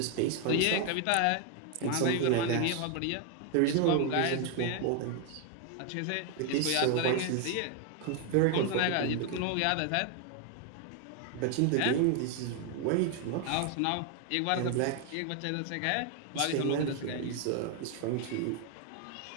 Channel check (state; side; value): different; both; correlation 0.01